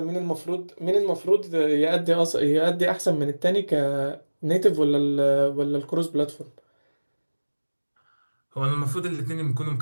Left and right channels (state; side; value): inverted; both; correlation -1.00